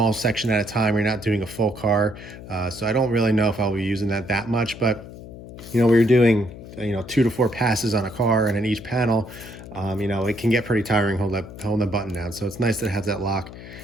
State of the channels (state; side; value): noise; left; hum, 14 dB below the sound